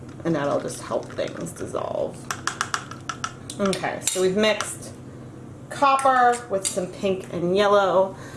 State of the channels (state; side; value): identical; both; correlation 1.00